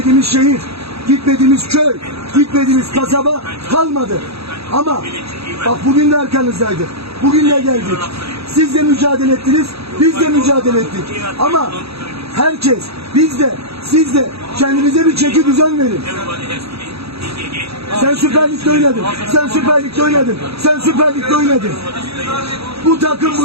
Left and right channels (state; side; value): late; left; 0.77 ms